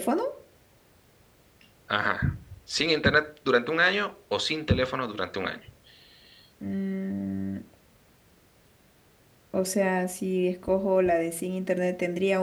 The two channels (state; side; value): identical; both; correlation 1.00